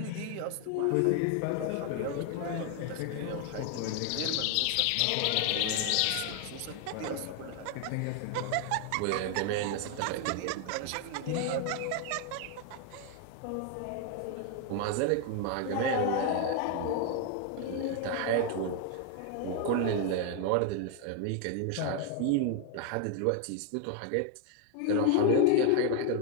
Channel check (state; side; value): different; both; correlation 0.00